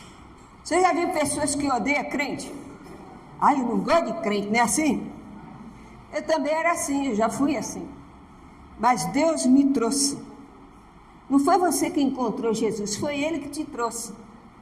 Você já viu pessoas que odeiam crente? Eu não gosto de crente, não é assim? Eu também era assim, eu já fui assim. Mas Deus me trouxe. Não foi você que encontrou Jesus, foi Ele que te trouxe.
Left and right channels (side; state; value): both; identical; correlation 1.00